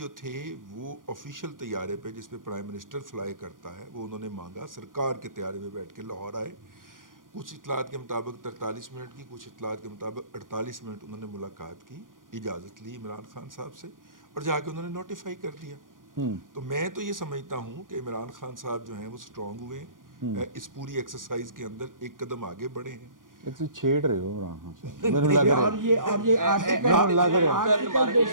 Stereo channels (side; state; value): left; late; 0.90 ms